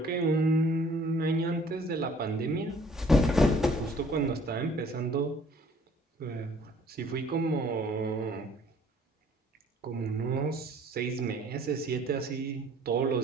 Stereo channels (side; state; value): both; normal; correlation 0.56